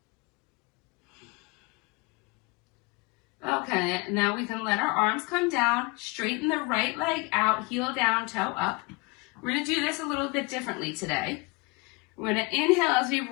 Okay, now we can let our arms come down, straighten the right leg out, heel down, toe up. We're going to do this a little bit differently today. We're going to inhale as we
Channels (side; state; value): right; quieter; 26.9 dB